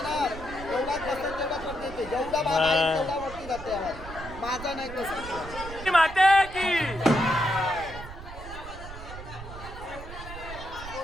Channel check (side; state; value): right; noise; rumble, 12 dB below the sound